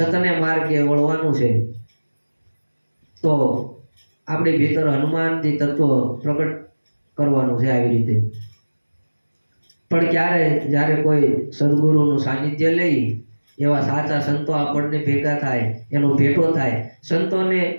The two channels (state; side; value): inverted; both; correlation -1.00